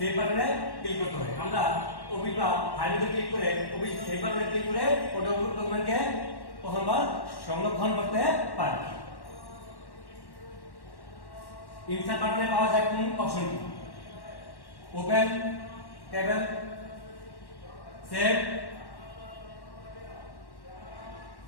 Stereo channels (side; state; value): right; late; 1.1 ms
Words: বাটনে ক্লিক করতে হয়। আমরা অফিস বা ফাইলে ক্লিক করে অফিস সেভ বাটনে ক্লিক করে ওই ডকুমেন্টকে প্রথমবার সংরক্ষণ করতে পারি। ইনসার্ট বাটনে পাওয়া যায় কোন অপশনটি? Open, table, save,